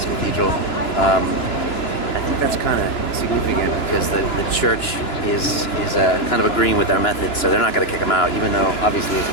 Cathedral. I think that's kind of significant because the church is kind of agreeing with our methods, so they're not going to kick them out, even though obviously it's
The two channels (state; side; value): late; right; 2.9 ms